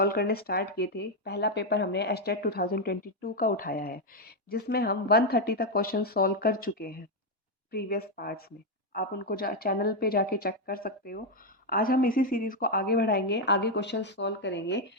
करने स्टार्ट किए थे। पहला पेपर हमने एचटेट 2022 का उठाया है, जिसमें हम 130 तक क्वेश्चन सॉल्व कर चुके हैं प्रीवियस पार्ट्स में। आप उनको चैनल पे जाके चेक कर सकते हो। आज हम इसी सीरीज़ को आगे बढ़ाएंगे, आगे क्वेश्चन सॉल्व करेंगे।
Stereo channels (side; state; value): both; normal; correlation 0.03